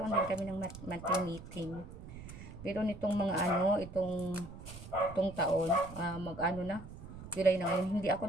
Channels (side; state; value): right; noise; rumble, 13 dB below the sound